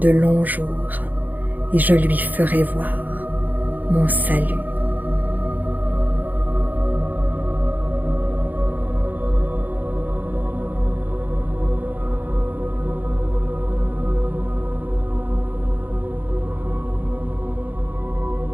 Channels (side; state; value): left; late; 0.083 ms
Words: longs jours et je lui ferai voir mon salut.